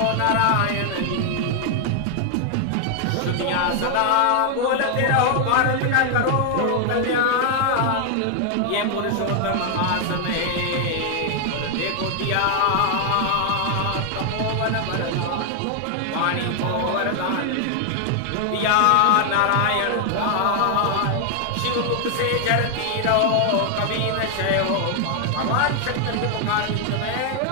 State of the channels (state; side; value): different; both; correlation 0.00